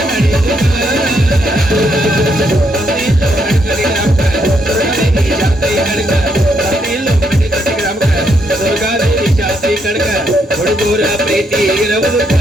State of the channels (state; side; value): normal; both; correlation 0.76